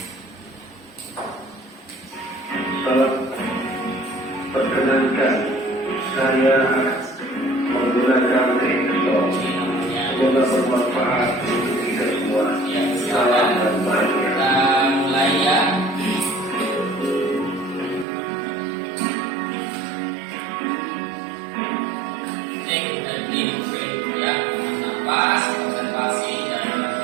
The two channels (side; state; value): left; drops out; at 18.1 s